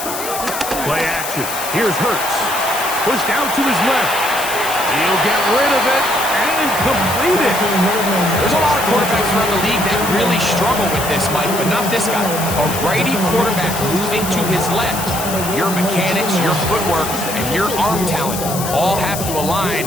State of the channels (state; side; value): noise; left; hiss, 6 dB below the sound